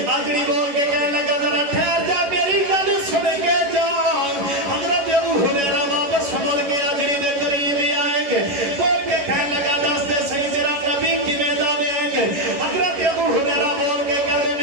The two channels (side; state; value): left; late; 11 ms